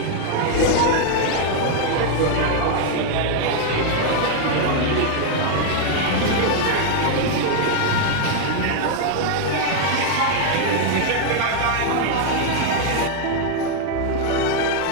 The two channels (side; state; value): both; different; correlation 0.00